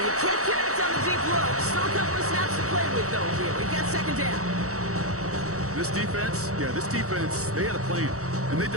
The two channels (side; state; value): left; late; 0.65 ms